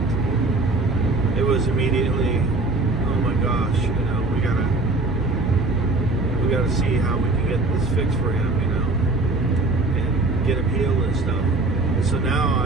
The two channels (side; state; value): left; quieter; 3.0 dB